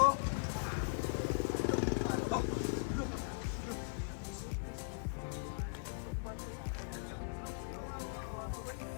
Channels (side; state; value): right; silent; digital silence